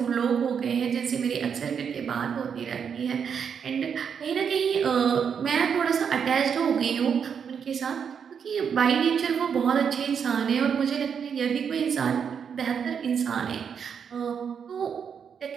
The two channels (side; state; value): left; quieter; 7.1 dB